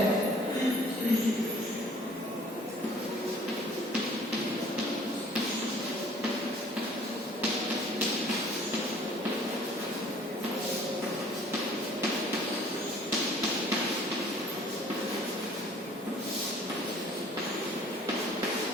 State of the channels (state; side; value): normal; both; correlation 0.54